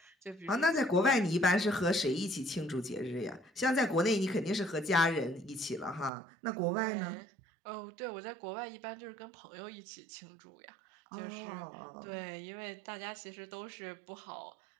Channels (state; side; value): drops out; left; at 6.1 s